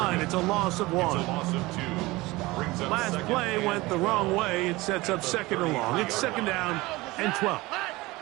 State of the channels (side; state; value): left; quieter; 21.0 dB